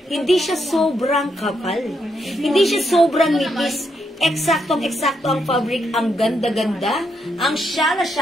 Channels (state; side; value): normal; both; correlation 0.79